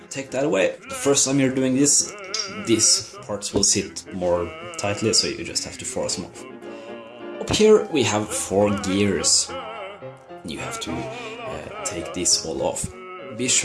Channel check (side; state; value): both; identical; correlation 1.00